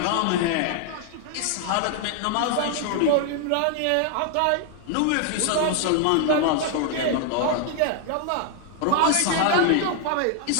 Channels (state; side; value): different; both; correlation 0.00